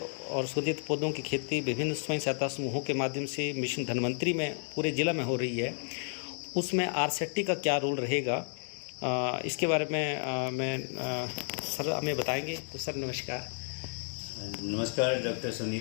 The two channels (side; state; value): right; silent; 56 dB below the other